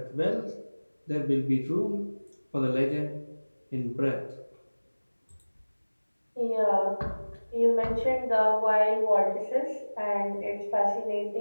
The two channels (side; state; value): both; inverted; correlation -1.00